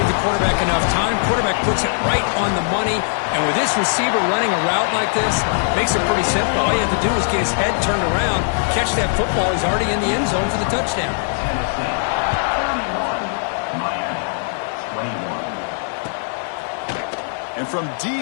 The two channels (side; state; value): right; silent; 55 dB below the other